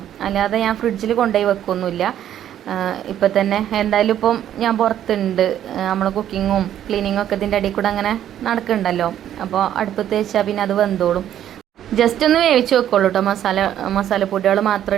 അല്ലാതെ ഞാൻ ഫ്രിഡ്ജിൽ കൊണ്ടുപോയി വെക്കൊന്നുമില്ല. ഇപ്പം തന്നെ എന്തായാലും ഇപ്പം ഞാൻ പുറത്തുണ്ട്, നമ്മൾ കുക്കിങ്ങും ക്ലീനിങ്ങും ഒക്കെ ഇതിൻ്റെ ഇടയിൽ കൂടെ അങ്ങനെ നടക്കുന്നുണ്ടല്ലോ. അപ്പോൾ അടുപ്പത്ത് വെച്ചാൽ പിന്നെ അത് വെന്തോളും. ജസ്റ്റ് ഒന്ന് വേവിച്ച് വെക്കുള്ളൂ കേട്ടോ, മസാലപ്പൊടികൾ മാത്രം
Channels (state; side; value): quieter; left; 10.9 dB